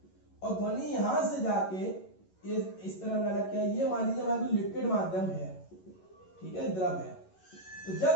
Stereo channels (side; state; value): right; late; 11 ms